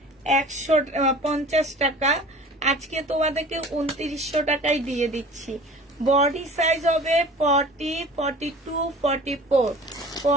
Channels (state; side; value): normal; both; correlation 0.43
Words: টাকা, আজকে তোমাদেরকে 2900 টাকায় দিয়ে দিচ্ছি। বডি সাইজ হবে 40 42 44